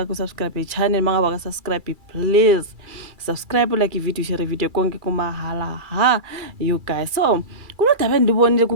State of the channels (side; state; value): left; late; 2.3 ms